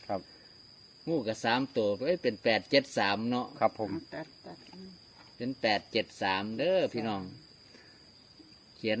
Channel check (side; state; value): both; identical; correlation 1.00